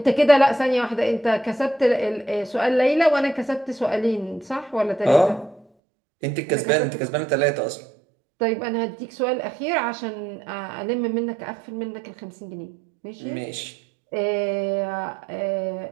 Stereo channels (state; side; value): drops out; left; at 5.7 s